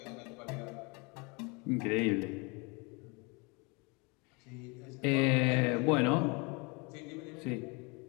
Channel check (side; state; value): right; quieter; 29.5 dB